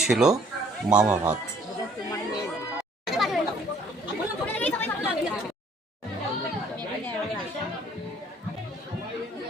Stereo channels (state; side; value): normal; both; correlation 0.59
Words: ছিল মামা ভাত।